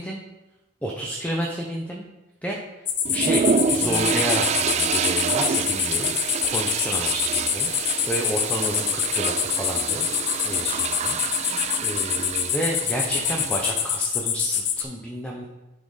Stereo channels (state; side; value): normal; both; correlation 0.21